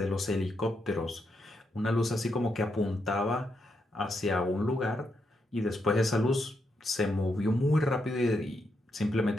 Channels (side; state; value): both; normal; correlation 0.81